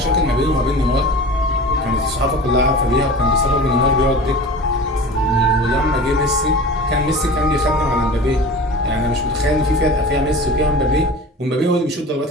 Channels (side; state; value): both; normal; correlation 0.37